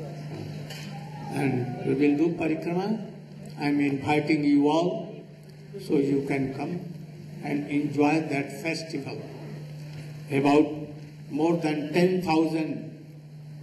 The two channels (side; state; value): both; identical; correlation 1.00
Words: And we will do Parikrama. I am inviting you all so you can come and enjoy that festival. About more than 10,000